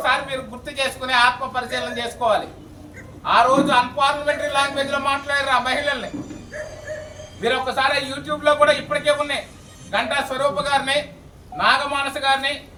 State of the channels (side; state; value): both; identical; correlation 1.00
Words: మీరు గుర్తు చేసుకుని ఆత్మ పరిశీలన చేసుకోవాలి. ఆ రోజు అన్పార్లమెంటరీ లాంగ్వేజ్ లో మాట్లాడారు ఆ మహిళల్ని. మీరు ఒక్కసారి యూట్యూబ్ లో కూడా ఇప్పటికే ఉన్నాయి. గంటా స్వరూప గారిని, నాగమానస గారిని,